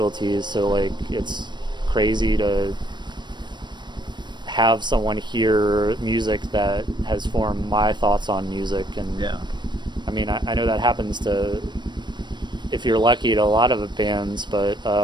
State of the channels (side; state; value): left; late; 0.22 ms